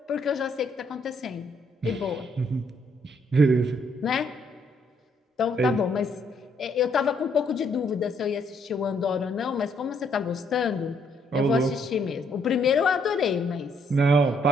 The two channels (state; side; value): normal; both; correlation 0.70